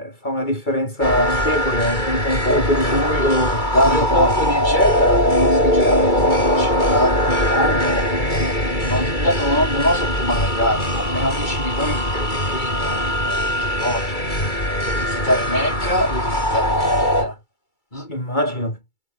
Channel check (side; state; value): right; late; 2.3 ms